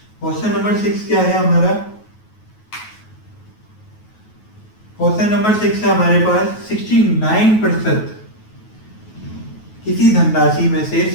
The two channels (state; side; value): late; right; 9.3 ms